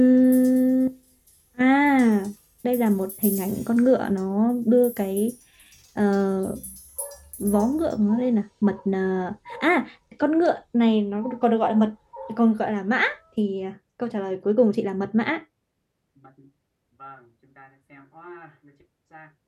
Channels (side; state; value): both; identical; correlation 1.00